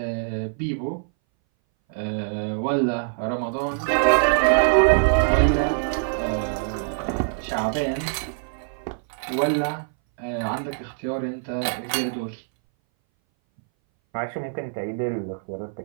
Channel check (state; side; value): silent; left; 60 dB below the other